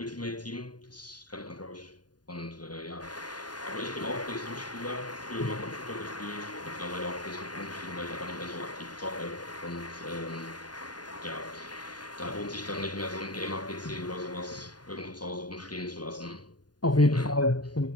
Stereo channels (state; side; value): late; right; 0.70 ms